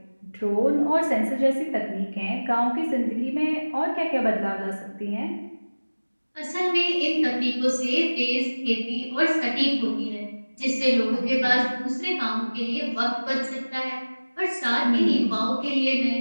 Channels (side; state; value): both; inverted; correlation -1.00